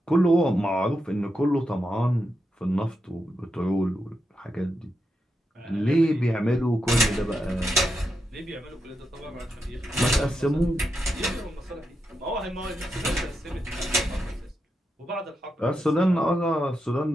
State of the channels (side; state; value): both; normal; correlation 0.86